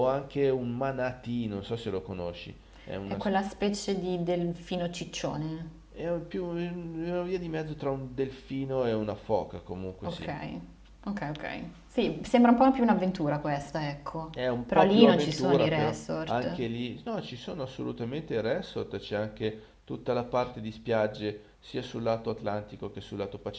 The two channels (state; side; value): identical; both; correlation 1.00